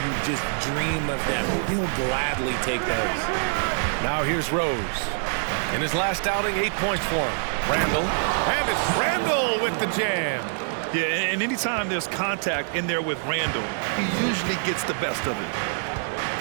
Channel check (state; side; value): silent; left; digital silence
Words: just dream of them. He'll gladly take those. Now here's Rose. In his last outing, 8 points for him. Randall. And it's Randall with the jam. Yeah, and anytime there's contact in there with Randall, he usually gets the best of it.